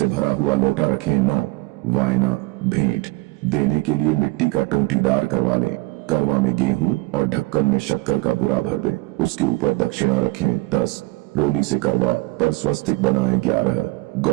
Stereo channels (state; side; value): quieter; left; 22.9 dB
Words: भरा हुआ लोटा रखें। 9 वायना भेंट देने के लिए मिट्टी का टोंटीदार करवा लें। करवा में गेहूं और ढक्कन में शक्कर का बुरा भर दें। उसके ऊपर दक्षिणा रखें। 10 रोली से करवा पर स्वस्तिक बनाएं। 11